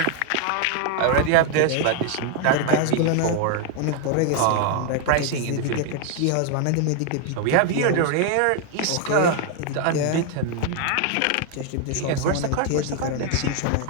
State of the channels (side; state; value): both; different; correlation 0.01